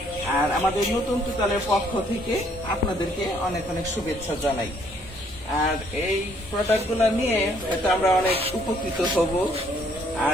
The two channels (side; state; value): both; normal; correlation 0.65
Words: আর আমাদের নতুন তুতালের পক্ষ থেকে আপনাদেরকে অনেক অনেক শুভেচ্ছা জানাই। আর এই প্রোডাক্ট গুলো নিয়ে হয়তো আমরা অনেক উপকৃত হব।